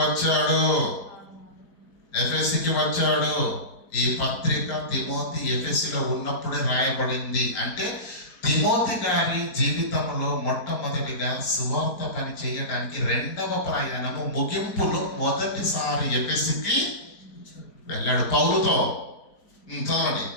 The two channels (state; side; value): late; right; 4.5 ms